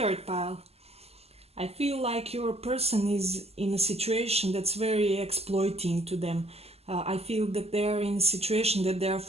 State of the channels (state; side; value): late; left; 0.29 ms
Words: pile. I feel like your person is in a situation that's very exploiting to them. I feel that they are in a situation that they are